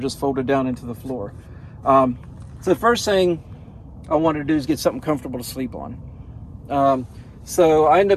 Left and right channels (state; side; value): identical; both; correlation 1.00